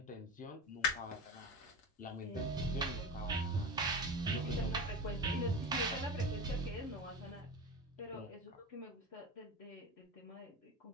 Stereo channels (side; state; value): both; normal; correlation 0.26